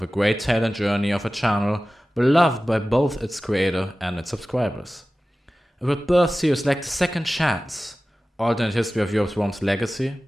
a great tale and journey of a channel beloved by both its creator and its subscribers. It would birth series like The Second Chance, Alternate History of Europe's Worms Legacy,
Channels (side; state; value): both; normal; correlation 0.96